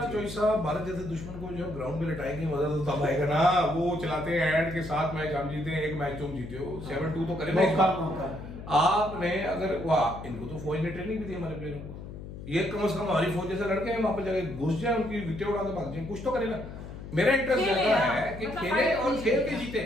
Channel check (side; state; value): left; noise; hum, 11 dB below the sound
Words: चोई साहब, भारत जैसे दुश्मन को जब ग्राउंड में लटाएंगे मजा तो तब आएगा ना। वो चलाते हैं ऐड के 7 मैच हम जीते हैं, 1 मैच तुम जीते हो, 7-2 तो करेगा मौका। आपने। अगर वाह, इनको तो फौज ने ट्रेनिंग भी दी हमारे प्लेयरों को, ये कम से कम हमारी फौज जैसे लड़के हैं, वहां पर जाके घुस जाए, उनकी विकेट उड़ा के भाग जाए, कुछ तो करेगा। मेरा इंटरेस्ट रहता है कि खेले और खेल के जीते।